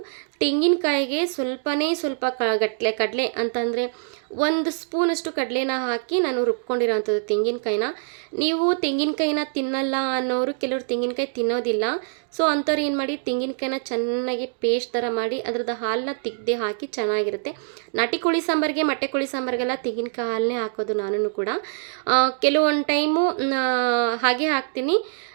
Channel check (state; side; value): silent; left; 57 dB below the other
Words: ತೆಂಗಿನಕಾಯಿಗೆ ಸ್ವಲ್ಪ ಕಡಲೆ ಅಂತಂದರೆ 1 ಸ್ಪೂನಷ್ಟು ಕಡಲೆನ ಹಾಕಿ ನಾನು ರುಬ್ಕೊಂಡಿರೋ ಅಂಥದ್ದು ತೆಂಗಿನಕಾಯಿನ. ನೀವು ತೆಂಗಿನಕಾಯಿನ ತಿನ್ನಲ್ಲ ಅನ್ನೋರು, ಕೆಲವರು ತೆಂಗಿನಕಾಯಿ ತಿನ್ನೋದಿಲ್ಲ. ಸೊ ಅಂಥವ್ರು ಏನು ಮಾಡಿ, ತೆಂಗಿನಕಾಯಿನ ಚೆನ್ನಾಗಿ ಪೇಸ್ಟ್ ಥರ ಮಾಡಿ ಅದರದ್ದು ಹಾಲನ್ನ ತೆಗ್ದು ಹಾಕಿ ಚೆನ್ನಾಗಿರುತ್ತೆ. ನಾಟಿ ಕೋಳಿ ಸಾಂಬಾರಿಗೆ, ಮೊಟ್ಟೆ ಕೋಳಿ ಸಾಂಬಾರಿಗೆಲ್ಲ ತೆಂಗಿನಕಾಯಿ ಹಾಲನ್ನೇ ಹಾಕೋದು ನಾನು ಕೂಡ. ಕೆಲವೊಂದು ಟೈಮು ಹಾಗೆ ಹಾಕ್ತೀನಿ.